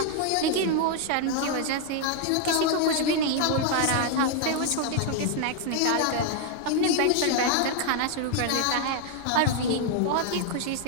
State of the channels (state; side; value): different; both; correlation 0.00